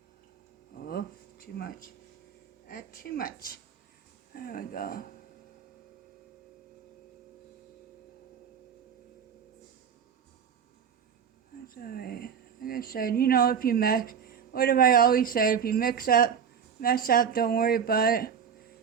Oh, too much. Too much. There we go. It's alright. Like I said, you know, if you mess, what have I always said? If you mess up, don't worry about it.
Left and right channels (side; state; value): left; quieter; 7.4 dB